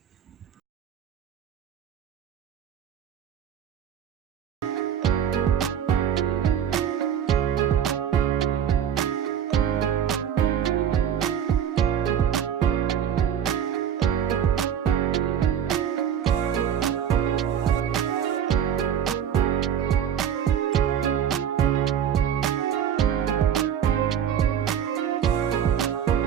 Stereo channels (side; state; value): left; quieter; 9.0 dB